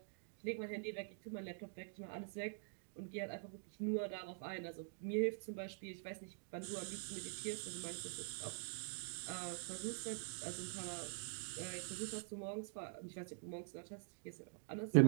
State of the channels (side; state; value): left; silent; digital silence